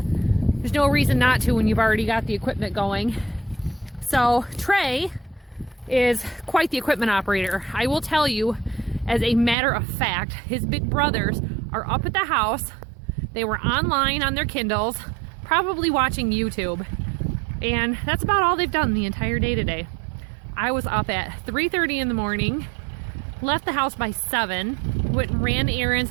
there's no reason not to when you've already got the equipment going. So Trey is quite the equipment operator. I will tell you, as a matter of fact, his big brothers are up at the house. They were online on their Kindles, probably watching YouTube. And that's about all they've done the entire day today. I was up at 3:30 in the morning, left the house by 7, went and ran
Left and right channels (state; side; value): drops out; left; at 9.6 s